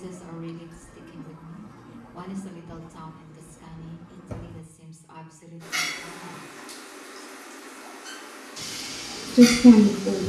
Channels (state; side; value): identical; both; correlation 1.00